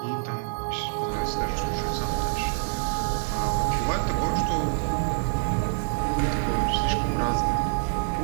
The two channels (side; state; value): left; silent; digital silence